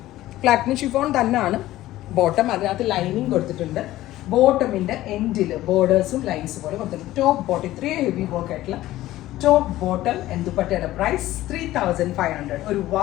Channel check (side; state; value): right; quieter; 15.5 dB